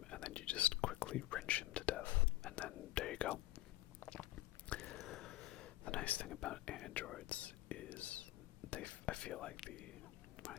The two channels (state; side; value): quieter; right; 16.4 dB